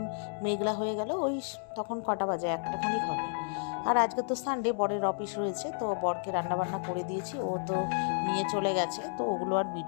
মেঘলা হয়ে গেল। ওই তখন কটা বাজে, একটা খানিক হবে। আর আজকে তো সানডে, বরের অফিস রয়েছে, তো বরকে রান্নাবান্না করে দিয়েছি। ও তো নিয়ে চলে গেছে, তো ওগুলো আর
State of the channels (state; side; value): silent; right; digital silence